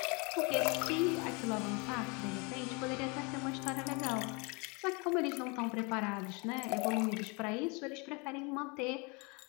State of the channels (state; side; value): quieter; right; 30.2 dB